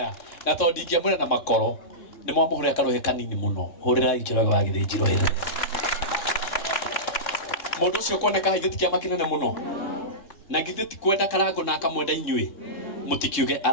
na tondũ ndingĩamwĩra na makoro nĩ mwamũhũrĩra karuhĩ kanini mũno hũrĩra Njoroge wa Githinji rũhĩ mũndũ ũcio kuoneka haithĩ ti kĩama kĩnene mũno na githĩ ti kwenda karango na akamwenda inyuĩ mũtikiuge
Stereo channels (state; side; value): late; right; 3.6 ms